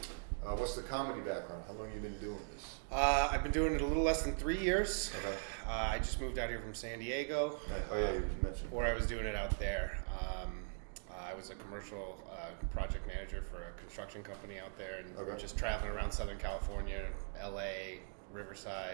What's the comedy background? How long have you been doing this? I've been doing it a little less than 3 years. Okay. I just moved out here from San Diego. Nice. Oh yeah, you mentioned. Before I was doing it out there. I was a commercial project manager for a construction company out there, and Okay. just traveling around Southern California, LA,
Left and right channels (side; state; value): left; silent; digital silence